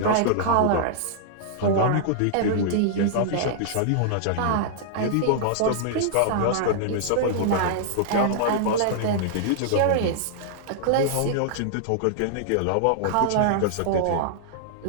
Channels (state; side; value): different; both; correlation -0.01